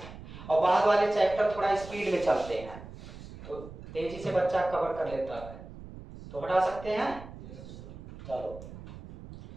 और बाद वाले चैप्टर थोड़ा स्पीड में चलते हैं, तो तेजी से बच्चा कवर कर लेता है। तो हटा सकते हैं। चलो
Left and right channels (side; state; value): right; noise; rumble, 14 dB below the sound